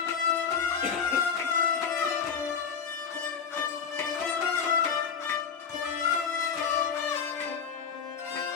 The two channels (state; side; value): quieter; right; 6.5 dB